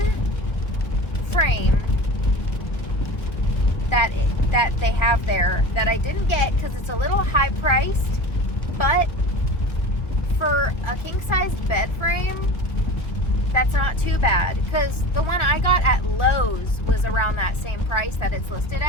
frame that they have there that I didn't get because it's a little high priced, but for a king size bed frame, that's not too bad, because the one I got at Lowe's was around that same price that it's listed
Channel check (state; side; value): late; right; 1.2 ms